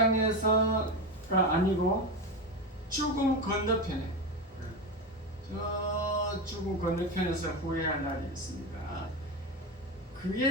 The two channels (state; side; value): normal; both; correlation 0.18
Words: 아니고 죽음 건너편에 저 죽음 건너편에서 후회할 날이 있습니다.